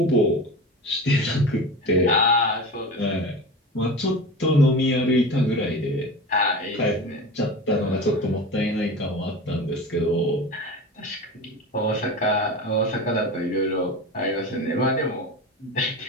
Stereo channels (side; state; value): both; normal; correlation 0.30